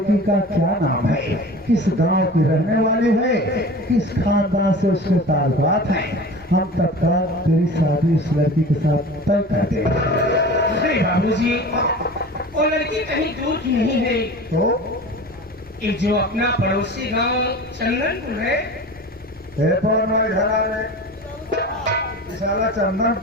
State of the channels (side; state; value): both; normal; correlation 0.37